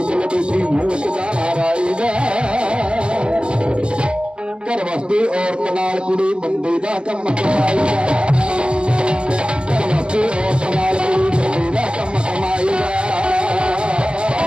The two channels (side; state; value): left; late; 0.056 ms